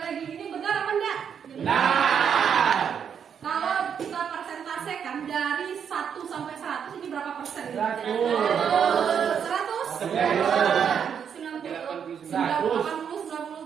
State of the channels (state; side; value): quieter; left; 7.7 dB